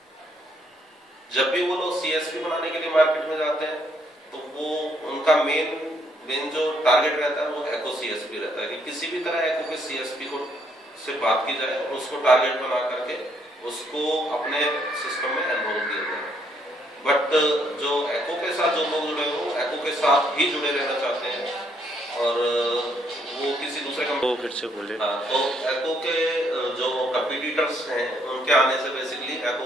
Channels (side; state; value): both; normal; correlation 0.71